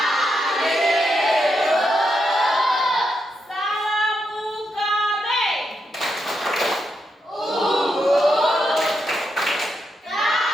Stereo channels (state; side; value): normal; both; correlation 0.83